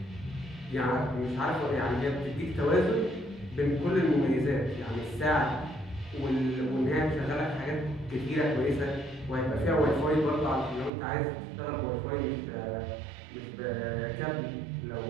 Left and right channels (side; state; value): left; drops out; at 10.9 s